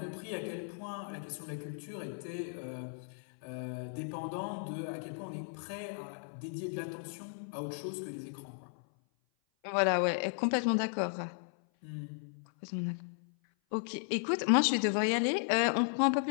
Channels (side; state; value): right; silent; 54 dB below the other